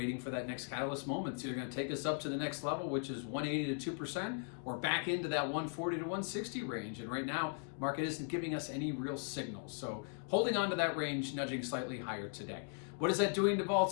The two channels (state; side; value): silent; right; 52 dB below the other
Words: for that next catalyst moment. It's either going to take us up to the next level, which is 180 to 2%, or back into that 140 to 160 range. And right now, market isn't giving us any real signals. So holding on to that range, nudging slightly higher today. What is that doing to